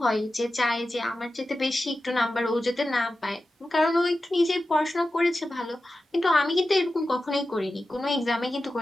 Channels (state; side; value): normal; both; correlation 0.93